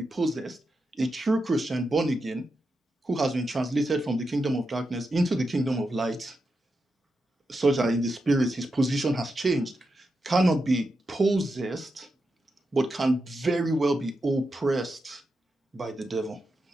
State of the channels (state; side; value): normal; both; correlation 0.87